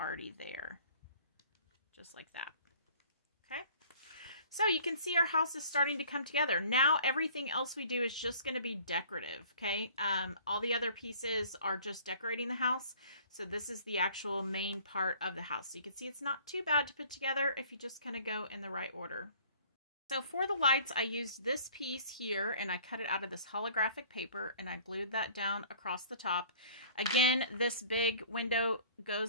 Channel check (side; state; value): both; inverted; correlation -0.51